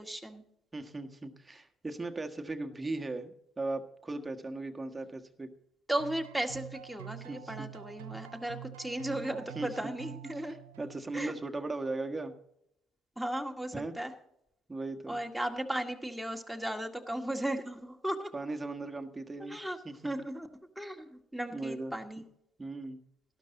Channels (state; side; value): normal; both; correlation 0.93